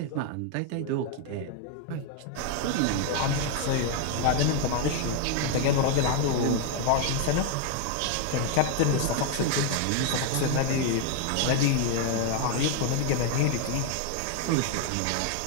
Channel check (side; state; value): both; different; correlation 0.00